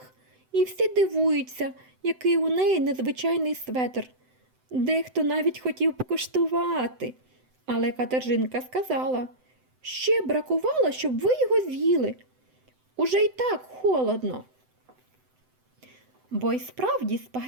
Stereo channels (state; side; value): late; left; 7.9 ms